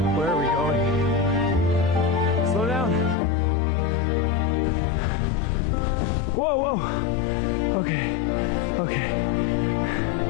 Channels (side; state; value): right; drops out; at 3.2 s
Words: Where are we going? Slow down. Whoa, whoa. Okay, okay.